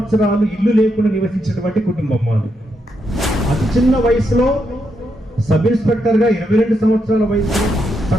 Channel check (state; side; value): normal; both; correlation 0.81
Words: ఇల్లు లేకుండా నివసించినటువంటి కుటుంబం మాది. అతి చిన్న వయసులో సబ్ ఇన్స్పెక్టర్ గా 22 సంవత్సరాల వయసులో,